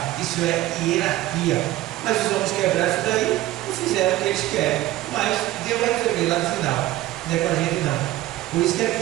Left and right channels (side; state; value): left; quieter; 15.6 dB